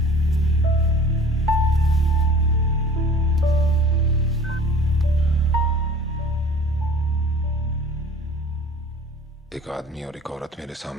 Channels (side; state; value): both; normal; correlation 0.46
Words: एक आदमी और एक औरत मेरे